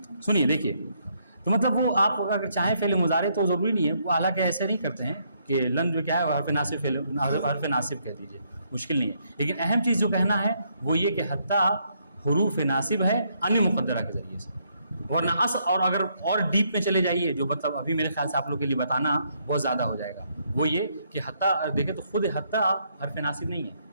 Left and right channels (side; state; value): both; inverted; correlation -0.73